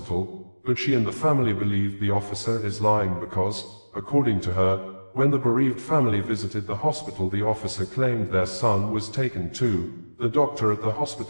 but she and the family believe the officer is lying because, according to her, when the bereaved family visited the hospital, the officer claimed their son was taken too. The doctor at the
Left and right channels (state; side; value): inverted; both; correlation -1.00